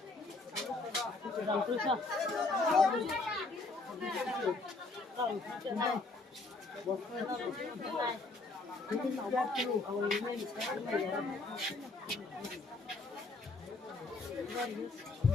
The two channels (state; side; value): quieter; right; 3.5 dB